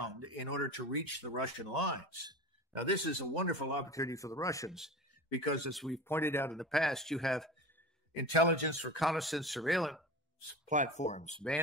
in order to reach the Russian lines. Now, this is a wonderful opportunity for the Russians because, as we've pointed out in the past, you have intelligence, reconnaissance, surveillance platforms,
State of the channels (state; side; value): normal; both; correlation 0.32